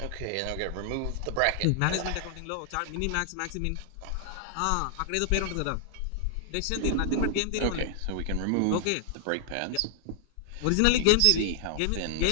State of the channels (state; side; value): different; both; correlation -0.01